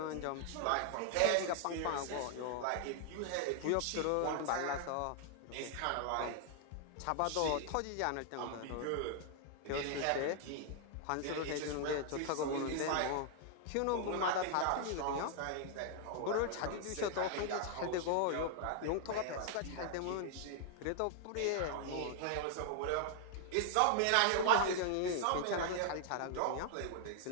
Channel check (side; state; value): both; different; correlation 0.00